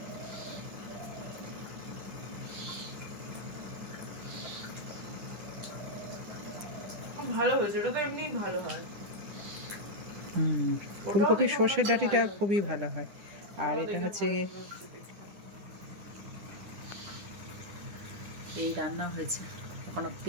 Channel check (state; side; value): late; left; 9.9 ms